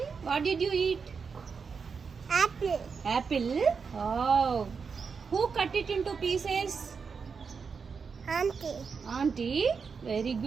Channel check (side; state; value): left; quieter; 5.6 dB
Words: what did you eat? Apple. Apple? Oh. Who cut it into pieces? Auntie. Auntie? Very